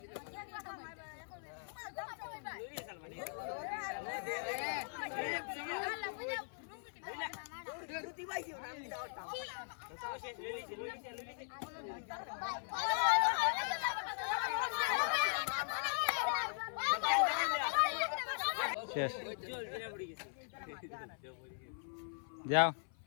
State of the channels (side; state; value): right; silent; 51 dB below the other